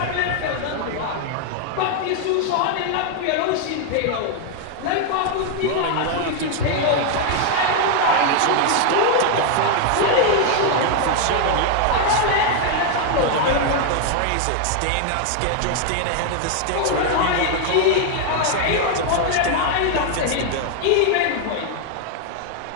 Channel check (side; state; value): both; different; correlation 0.00